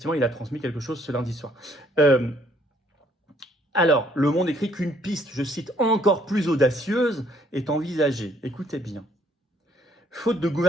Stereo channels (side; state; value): both; normal; correlation 0.65